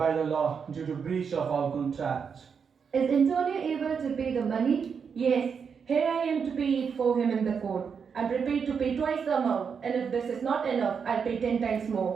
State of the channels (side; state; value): left; quieter; 6.4 dB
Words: the law due to breach of our contract. Is Antonio able to pay the money? Yes, here I am to pay it for him in the court. I'm prepared to pay twice the amount, and if this is not enough, I'll pay 10 times